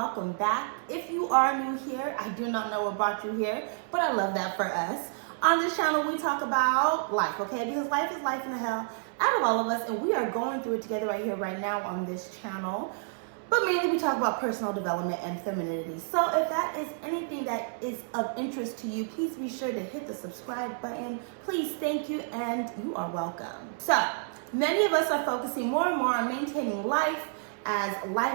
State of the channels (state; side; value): silent; left; 58 dB below the other